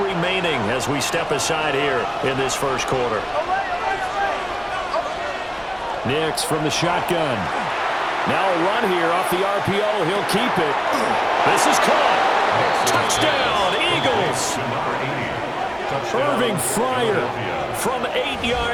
remaining as we step aside here in this 1st quarter. Nix from the shotgun. Now a run here off the RPO. He'll keep it. This is caught. Touchdown, Eagles. Irving Fryer from 8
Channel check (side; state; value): both; identical; correlation 1.00